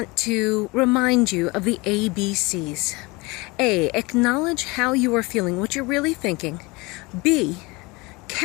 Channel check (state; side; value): quieter; right; 24.6 dB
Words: to remind you of the ABCs. A, acknowledge how you are feeling, what you're really thinking. B,